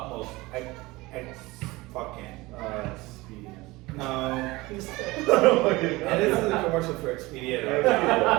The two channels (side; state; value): left; quieter; 21.3 dB